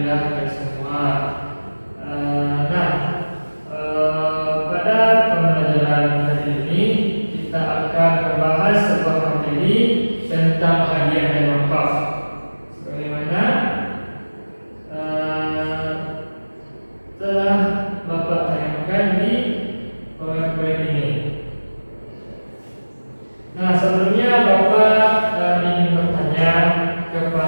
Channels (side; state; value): both; inverted; correlation -1.00